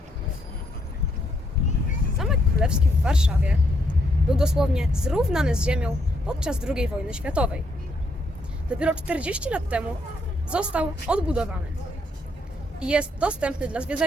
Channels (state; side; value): normal; both; correlation 0.74